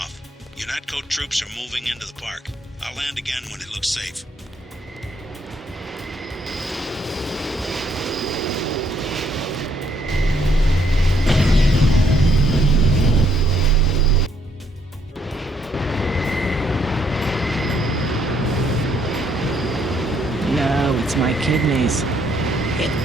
UNATCO troops are moving into the park. I'll land again when it looks safe. No, it's my kidneys.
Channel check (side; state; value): both; normal; correlation 0.70